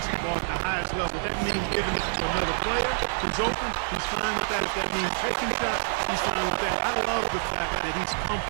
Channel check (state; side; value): silent; left; digital silence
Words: at the highest level. That means giving it to another player who's open. He's fine with that. If that means taking shots, he's fine with that. I love the fact that he's